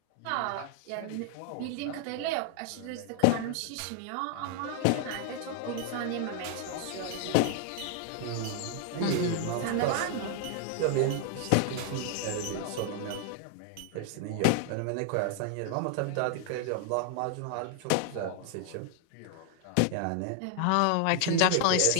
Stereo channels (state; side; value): different; both; correlation 0.00